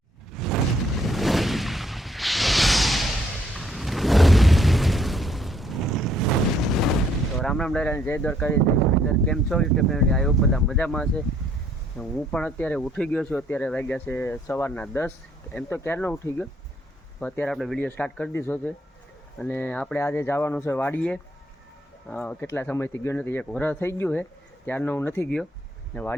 રામ રામ ડાયરા, જય દ્વારકાધીશ. કેમ છો યુટ્યુબ ફેમિલી? આ બધા મજામાં છે. હું પણ અત્યારે ઉઠી ગયો છું. અત્યારે વાગ્યા છે સવારના 10. એમ તો ક્યારનો ઉઠી ગયો, તો અત્યારે આપણે વિડીયો સ્ટાર્ટ કરી દીધો છે. અને આપણે આજે જવાનું છે વાડીએ. કેટલા સમયથી ગયો નથી, 1 વર્ષ થઈ ગયું છે ત્યારનો હું નથી ગયો. ને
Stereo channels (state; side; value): normal; both; correlation 0.66